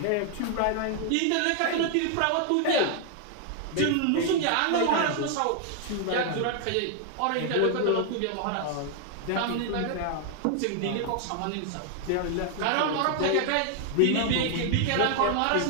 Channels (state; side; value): different; both; correlation 0.00